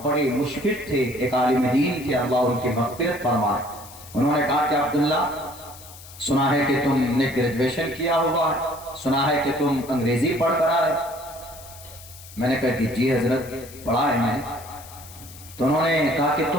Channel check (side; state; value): left; noise; hiss, 18 dB below the sound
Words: बड़े मुशफिक थे, एक आलिम दीन थे, अल्लाह उनकी मग़फ़िरत फरमाए। उन्होंने कहा कि अब्दुल्ला, सुना है कि तुमने ग्रेजुएशन किया हुआ है, सुना है कि तुम अंग्रेजी पढ़ कर आए। मैंने कहा कि जी हजरत, पढ़ा है मैंने। तो उन्होंने कहा कि